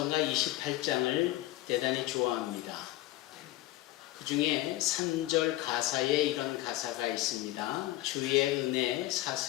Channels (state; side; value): quieter; right; 16.6 dB